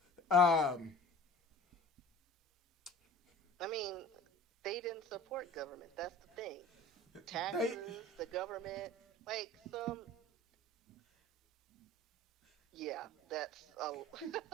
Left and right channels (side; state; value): both; normal; correlation 0.42